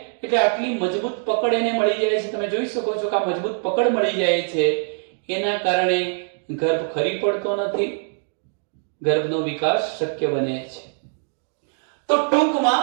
એટલે આટલી મજબૂત પકડ એને મળી જાય છે. તમે જોઈ શકો છો કે આ મજબૂત પકડ મળી જાય છે. એના કારણે ગર્ભ ખરી પડતો નથી, ગર્ભનો વિકાસ શક્ય બને છે. તો ટૂંકમાં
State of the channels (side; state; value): left; silent; 62 dB below the other